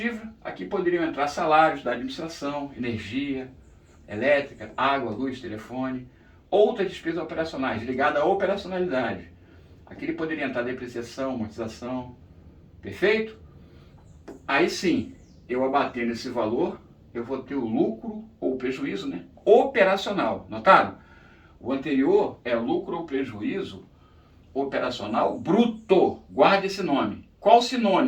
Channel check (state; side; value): identical; both; correlation 1.00